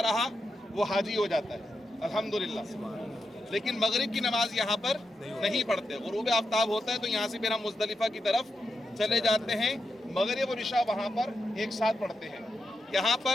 رہا وہ حاجی ہو جاتا ہے الحمدللہ۔ لیکن مغرب کی نماز یہاں پر نہیں پڑھتے، غروب آفتاب ہوتا ہے تو یہاں سے پھر ہم مزدلفہ کی طرف چلے جاتے ہیں، مغرب اور عشاء وہاں پر ایک ساتھ پڑھتے ہیں۔ یہاں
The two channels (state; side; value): normal; both; correlation 0.86